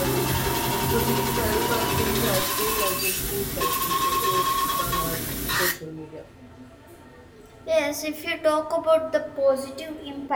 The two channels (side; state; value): both; identical; correlation 1.00